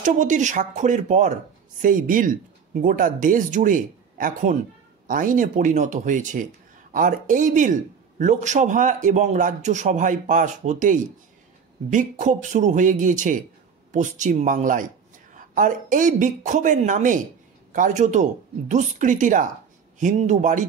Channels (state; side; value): quieter; left; 6.5 dB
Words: স্বাক্ষরের পর সেই বিল গোটা দেশ জুড়ে এখন আইনে পরিণত হয়েছে। আর এই বিল লোকসভা এবং রাজ্যসভায় পাস হতেই বিক্ষোভ শুরু হয়ে গিয়েছে পশ্চিম বাংলায়। আর এই বিক্ষোভের নামে কার্যত দুষ্কৃতীরা হিন্দু